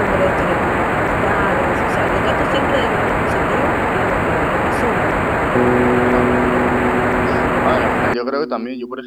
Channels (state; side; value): identical; both; correlation 1.00